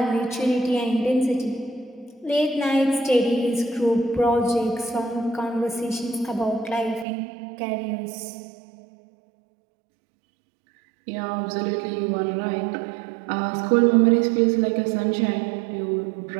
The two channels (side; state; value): left; drops out; at 7.1 s